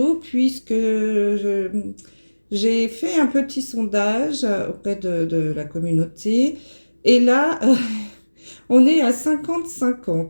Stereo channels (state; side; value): inverted; both; correlation -1.00